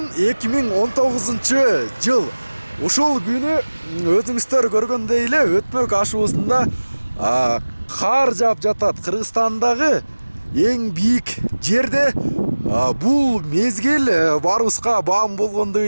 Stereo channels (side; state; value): both; inverted; correlation -1.00